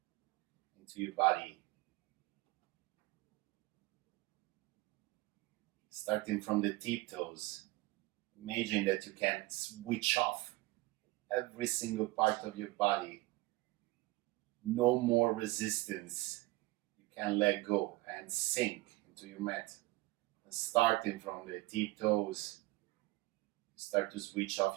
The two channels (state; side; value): quieter; left; 20.8 dB